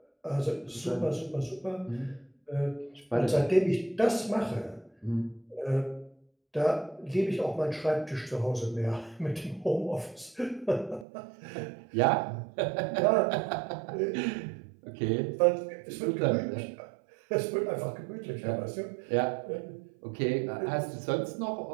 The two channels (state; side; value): drops out; left; at 11.1 s